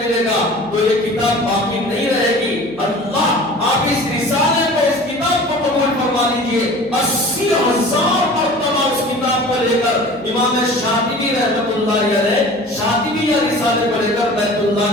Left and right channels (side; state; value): right; noise; hum, 25 dB below the sound